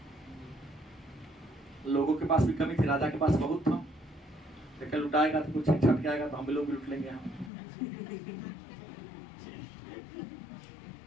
लोगों के पास भी कमी थी, राजा के पास बहुत था। देखा लुटाएगा तो कुछ छट आएगा तो हम भी लोग भी लुट लेंगे। हम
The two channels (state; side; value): drops out; right; at 7.5 s